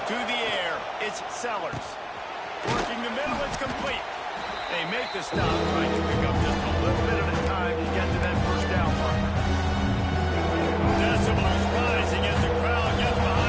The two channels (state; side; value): identical; both; correlation 1.00